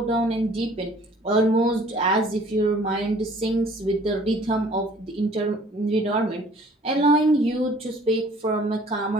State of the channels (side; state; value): both; normal; correlation 0.54